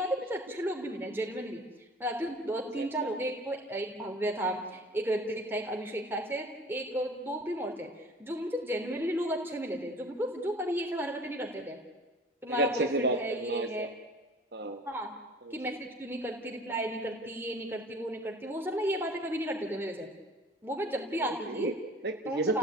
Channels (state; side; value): normal; both; correlation 0.45